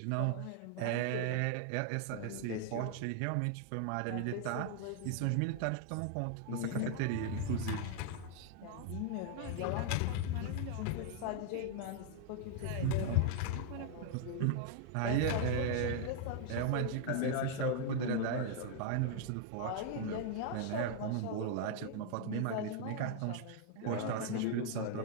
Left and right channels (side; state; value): both; different; correlation 0.00